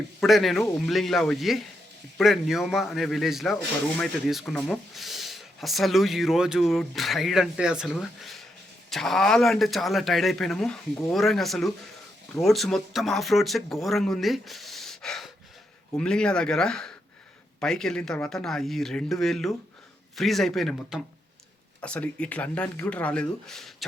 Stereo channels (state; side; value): normal; both; correlation 0.81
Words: ఇప్పుడే నేను ఉమ్లింగ్లా పోయి ఇప్పుడే న్యోమా అనే విలేజ్లో ఒక రూమ్ అయితే తీసుకున్నాము. అసలు ఈరోజు రైడ్ అంటే అసలు చాలా అంటే చాలా టైర్డ్ అయిపోయినాము. ఘోరంగా అసలు రోడ్స్ మొత్తం ఆఫ్ రోడ్సే ఘోరంగా ఉంది. ఉమ్లింగ్లా దగ్గర పైకి వెళ్ళిన తర్వాత నా ఈ 2 వేళ్ళు ఫ్రీజ్ అయిపోయినాయి మొత్తం. అసలు ఇట్లా అనడానికి కూడా రాలేదు.